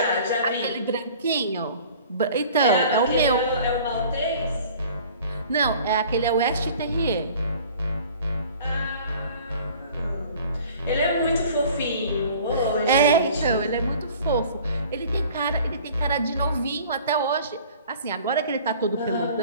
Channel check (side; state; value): both; inverted; correlation -0.48